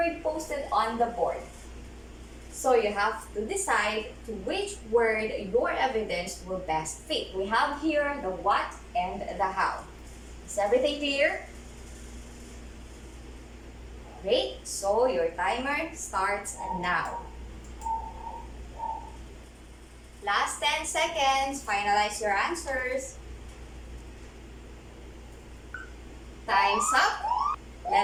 posted on the board. So you have to decide to which word your evidence will best fit. We have here the what and the how. Is everything clear? Great, so your timer starts now. Last 10 seconds, finalize your answers. Time's up.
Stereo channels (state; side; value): identical; both; correlation 1.00